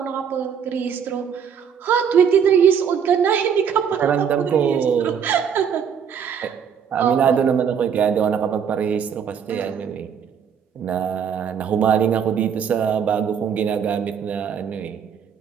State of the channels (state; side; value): quieter; left; 7.5 dB